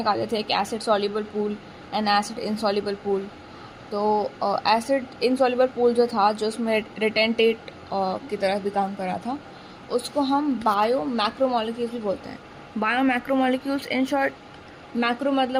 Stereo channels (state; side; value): identical; both; correlation 1.00